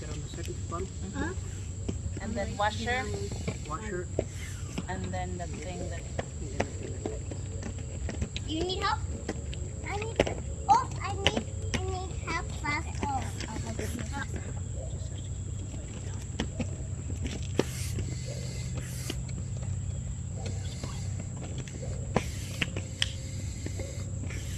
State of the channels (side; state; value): both; identical; correlation 1.00